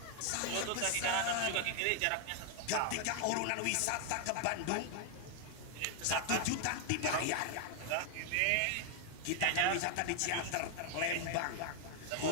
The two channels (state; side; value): different; both; correlation 0.00